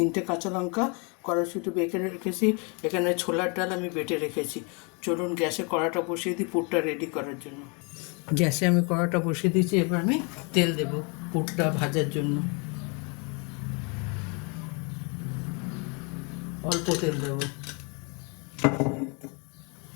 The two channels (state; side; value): quieter; right; 33.5 dB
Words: কাঁচা লঙ্কা কড়াইশুঁটি বেটে রেখেছি, এখানে ছোলার ডাল আমি বেটে রেখেছি। চলুন গ্যাসে কড়াটা বসিয়ে দিই পুরটা রেডি করার জন্য। গ্যাসে আমি কড়াটা বসিয়ে দিয়েছি, এবার আমি তেল দেব পুরটা ভাজার জন্য। অল্প তেল দেব,